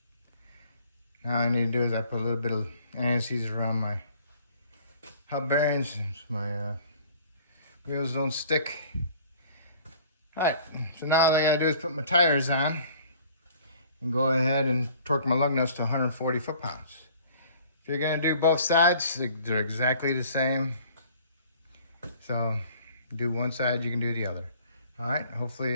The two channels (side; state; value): both; inverted; correlation -0.53